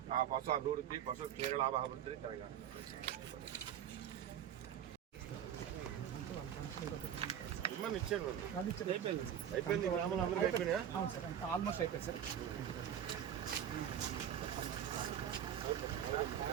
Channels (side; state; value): left; quieter; 9.7 dB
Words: ఆ పశు అభివృద్ధి పశు క్షీరలాభ అభివృద్ధి జరగాలి. అయిపోయింది ఆల్మోస్ట్ అయిపోయింది సార్.